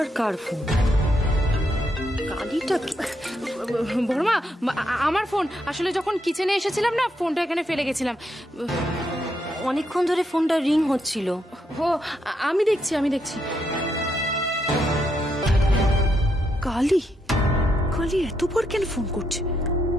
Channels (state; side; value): normal; both; correlation 0.79